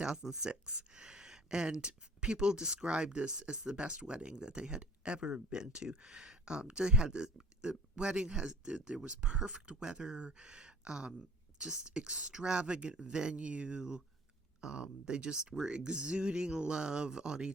And people described this as the best wedding that they had ever been to. They had the wedding there was perfect weather, just extravagant venue. They just were exuding love on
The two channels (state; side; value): normal; both; correlation 0.47